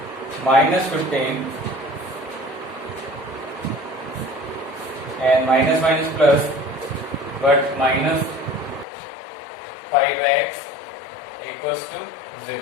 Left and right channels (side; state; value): right; drops out; at 8.8 s